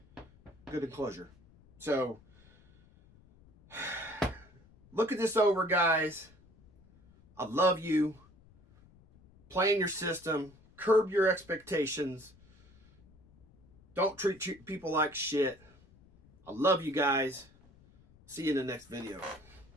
good enclosure. So look at this over, guys. I love you. Plan your system. Curb your expectations. Don't treat people like shit. I love you guys. See you in the next video.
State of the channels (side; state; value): left; noise; rumble, 27 dB below the sound